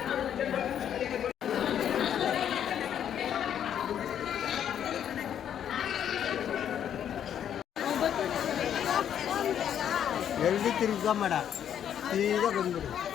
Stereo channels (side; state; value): right; quieter; 9.5 dB